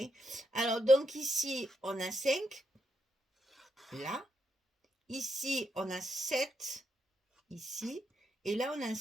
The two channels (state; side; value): normal; both; correlation 0.81